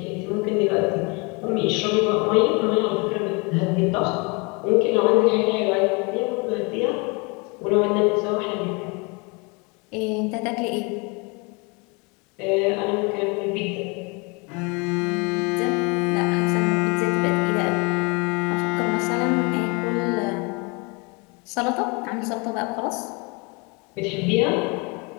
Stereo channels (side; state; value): right; quieter; 30.0 dB